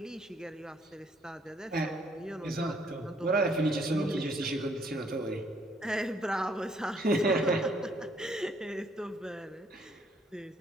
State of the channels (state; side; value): normal; both; correlation 0.66